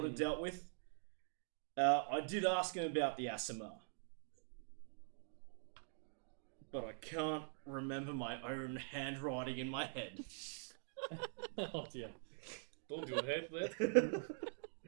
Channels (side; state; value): left; silent; digital silence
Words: of dealt with. I did ask him about the Asimar, but I can't remember my own handwriting in my head. Oh dear. Don't you hate that?